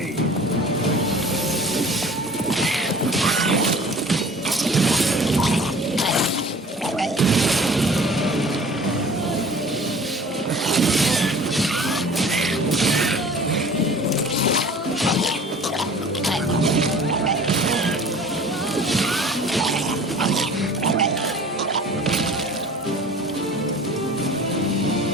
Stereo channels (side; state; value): both; normal; correlation 0.45